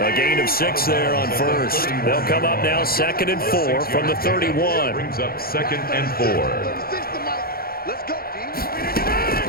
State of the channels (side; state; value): right; late; 0.44 ms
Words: gain of 6 there on first. They'll come up now 2nd and 4 from the 31. Brings up 2nd and 4. 36 to Mike. Let's go, D.